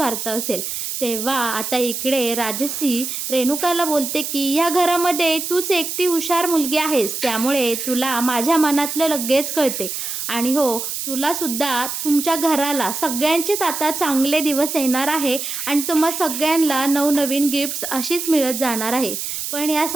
असेल. तेव्हा आता इकडे राजसी रेणुकाला बोलते की या घरामध्ये तूच एकटी हुशार मुलगी आहेस, त्यामुळे तुला माझ्या मनातलं लगेच कळते. आणि हो, तुलासुद्धा तुमच्या घराला सगळ्यांचेच आता चांगले दिवस येणार आहे आणि तुम्हा सगळ्यांना नवनवीन गिफ्ट्स अशीच मिळत जाणार आहे. पण या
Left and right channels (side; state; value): right; noise; hiss, 4 dB below the sound